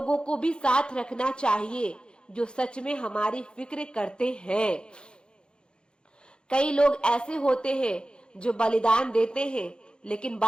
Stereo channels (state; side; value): late; right; 0.050 ms